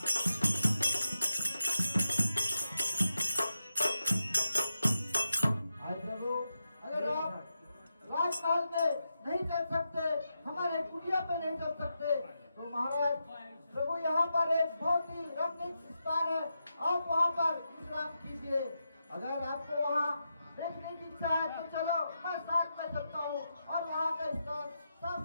अगर आप राजकाल में नहीं चल सकते, हमारे कुटिया पे नहीं चल सकते, तो महाराज प्रभु यहाँ पर एक बहुत ही रमणीक स्थान है, आप वहाँ पर विश्राम कीजिए। अगर आपको वहाँ देखने की इच्छा है तो चलो, मैं साथ में चलता हूँ और वहाँ का स्थान साफ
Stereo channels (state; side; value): inverted; both; correlation -0.87